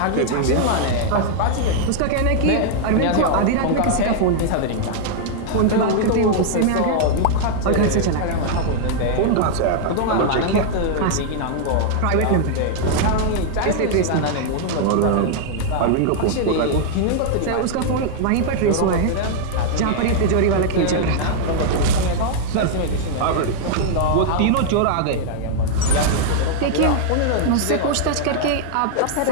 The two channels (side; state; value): both; different; correlation -0.01